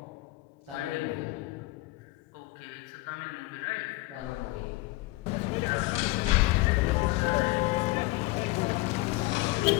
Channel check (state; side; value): quieter; right; 20.8 dB